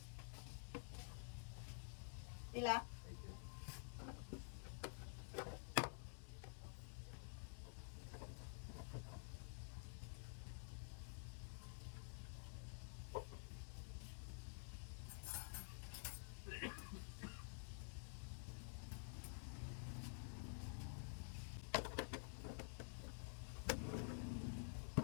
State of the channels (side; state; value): right; silent; digital silence